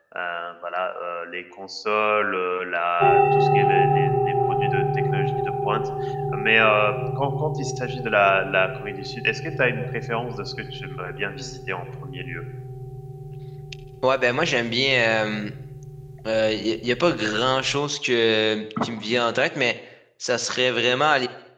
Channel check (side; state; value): both; identical; correlation 1.00